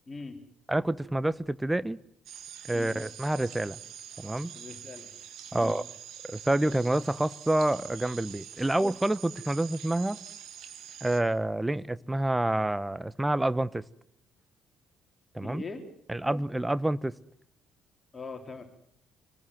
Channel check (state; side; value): normal; both; correlation 0.98